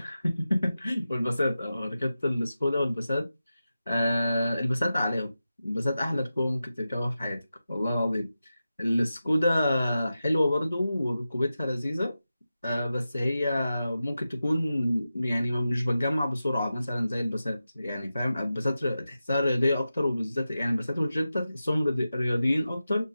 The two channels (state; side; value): inverted; both; correlation -0.92